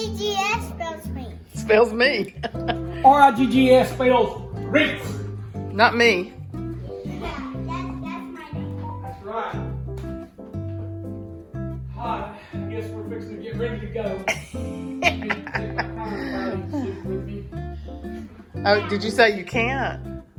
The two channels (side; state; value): both; identical; correlation 1.00